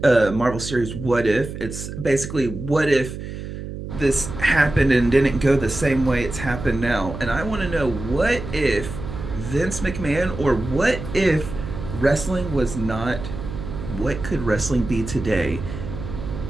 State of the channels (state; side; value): noise; right; hum, 8 dB below the sound